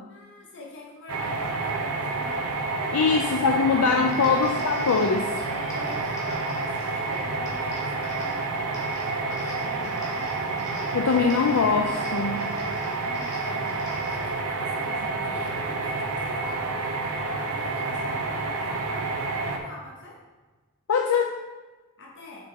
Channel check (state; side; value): normal; both; correlation -0.06